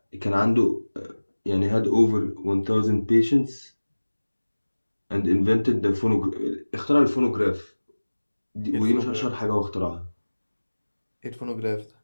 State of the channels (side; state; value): both; inverted; correlation -1.00